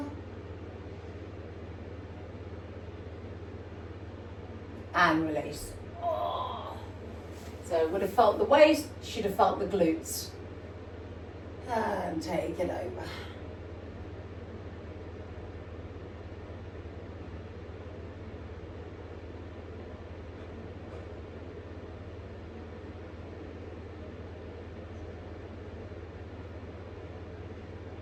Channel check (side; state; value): both; identical; correlation 1.00